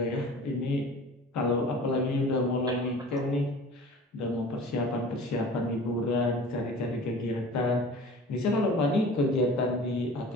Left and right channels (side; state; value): both; normal; correlation 0.41